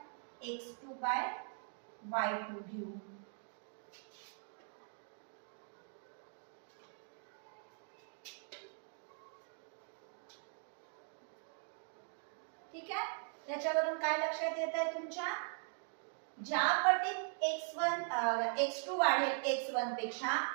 x2 बाय y2 घेऊ. ठीक आहे. याच्यावरून काय लक्षात येत आहे तुमच्या, ज्या पटीत x2 वाढेल x1 पेक्षा,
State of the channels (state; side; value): silent; left; 50 dB below the other